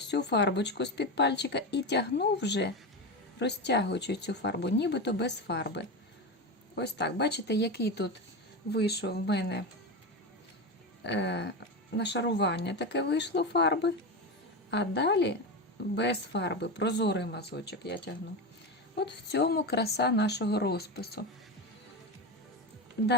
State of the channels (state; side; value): normal; both; correlation 0.19